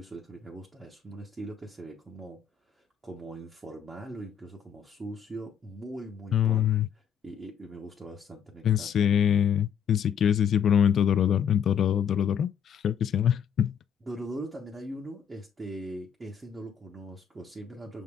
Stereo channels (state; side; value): quieter; right; 8.0 dB